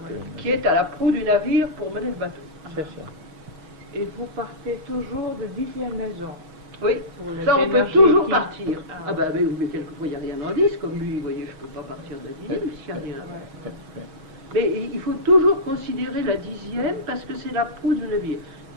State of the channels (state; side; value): late; left; 6.3 ms